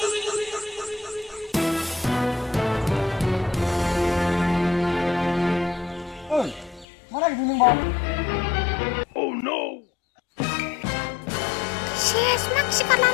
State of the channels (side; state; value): right; drops out; at 6.9 s